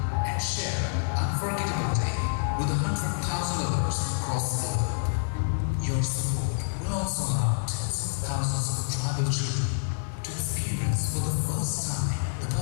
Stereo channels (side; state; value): right; silent; 60 dB below the other